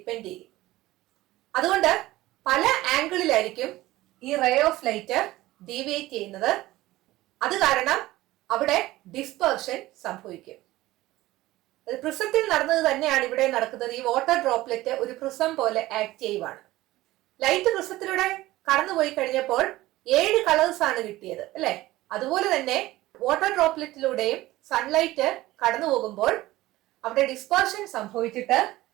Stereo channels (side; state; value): left; quieter; 17.3 dB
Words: ചെയ്യും. അതുകൊണ്ട് പല ആംഗിളിലായിരിക്കും ഈ റേ ഓഫ് ലൈറ്റ് ഡീവിയേറ്റ് ചെയ്യുന്നത്. അത് കാരണം അവിടെ ഡിസ്പേർഷൻ സംഭവിക്കും. പ്രിസത്തിൽ നടന്നത് തന്നെയാണ് ഇവിടെ നടക്കുന്നത്. ഈ വാട്ടർ ഡ്രോപ്ലെറ്റ് ഒരു പ്രിസം പോലെ ആക്ട് ചെയ്യുവാണ്. ലൈറ്റ് പ്രിസത്തിലൂടെ കടന്നുപോയി കഴിഞ്ഞപ്പോൾ 7 കളേഴ്സ് ആണ് കിട്ടിയത്, അല്ലെ? അതുപോലെ തന്നെ വാട്ടർ ഡ്രോപ്ലെറ്റിലൂടെയും സൺലൈറ്റ് കടന്നു പോകുമ്പോൾ അവിടെ ഡിസ്പേർഷൻ സംഭവിച്ചിട്ട്